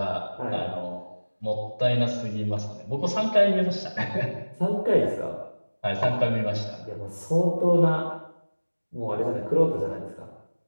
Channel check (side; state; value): both; inverted; correlation -1.00